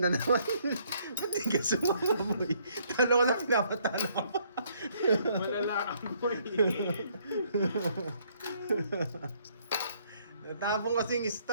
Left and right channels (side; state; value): both; inverted; correlation -0.67